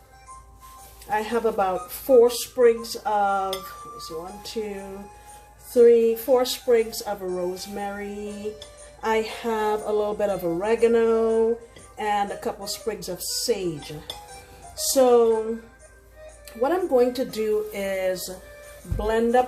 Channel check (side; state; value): both; identical; correlation 1.00